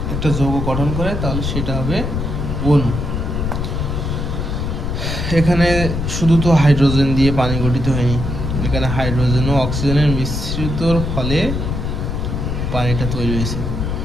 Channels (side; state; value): left; noise; rumble, 2 dB below the sound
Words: একটা যৌগ গঠন করে তাহলে সেটা হবে অণু। এখানে শুধু তো হাইড্রোজেন দিয়ে পানি গঠিত হয়নি, এখানে হাইড্রোজেন ও অক্সিজেনের মিশ্রিতর ফলে পানিটা তৈরি হয়েছে।